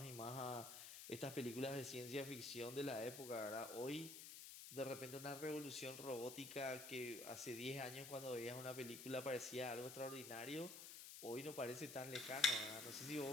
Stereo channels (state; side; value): noise; left; hiss, 9 dB below the sound